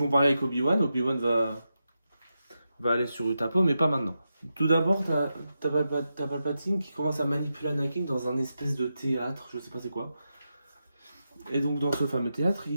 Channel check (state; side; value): inverted; both; correlation -0.88